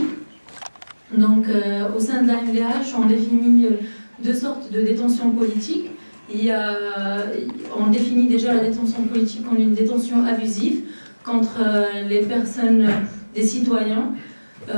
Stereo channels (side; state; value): both; inverted; correlation -1.00